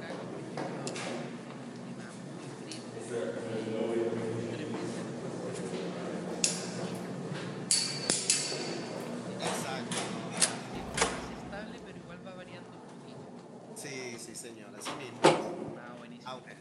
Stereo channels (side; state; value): both; identical; correlation 1.00